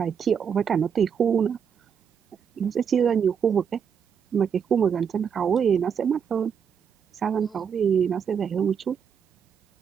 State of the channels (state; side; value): quieter; left; 7.2 dB